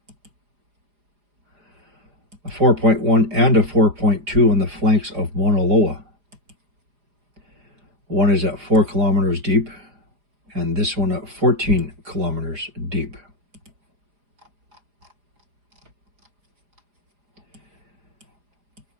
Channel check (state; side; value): late; left; 4.9 ms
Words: A 4.1 and a 4.2 on the flanks of Mauna Loa. One is at 4 kilometers deep, and this one at 14 kilometers deep.